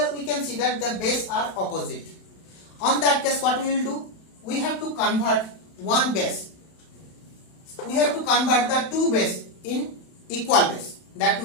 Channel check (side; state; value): right; late; 31 ms